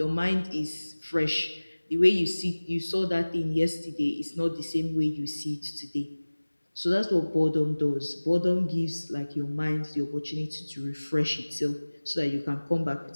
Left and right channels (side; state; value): both; inverted; correlation -1.00